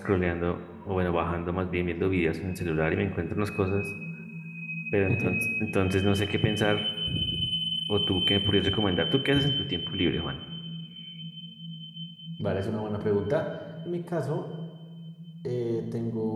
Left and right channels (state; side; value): identical; both; correlation 1.00